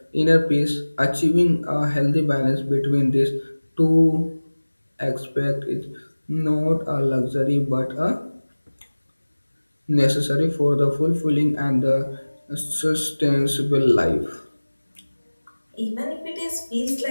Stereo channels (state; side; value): inverted; both; correlation -1.00